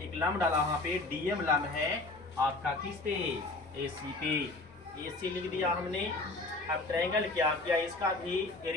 लंब डाला, वहां पे DM लंब है आपका किस पे, AC पे, AC लिख दिया हमने। अब ट्रायंगल क्या किया, इसका भी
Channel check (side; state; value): right; quieter; 3.1 dB